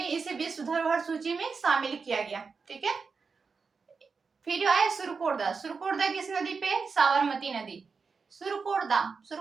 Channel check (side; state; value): left; quieter; 5.0 dB